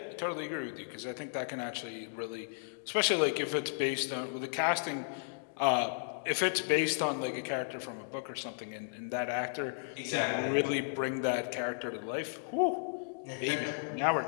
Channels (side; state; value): right; silent; digital silence